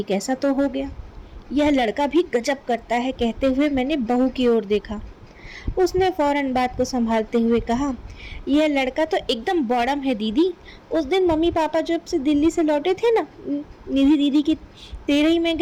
कैसा तो हो गया। यह लड़का भी गजब करता है, कहते हुए मैंने बहू की ओर देखा। उसने फौरन बात को संभालते हुए कहा, यह लड़का तो एकदम बॉडम है दीदी। उस दिन मम्मी पापा जब से दिल्ली से लौटे थे ना, निधि दीदी की तेरही में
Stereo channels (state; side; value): identical; both; correlation 1.00